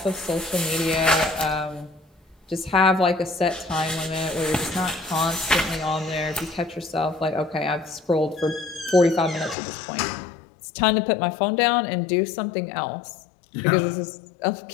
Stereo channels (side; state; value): right; drops out; at 9.6 s